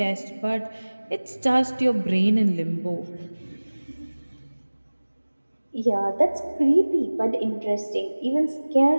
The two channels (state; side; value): inverted; both; correlation -1.00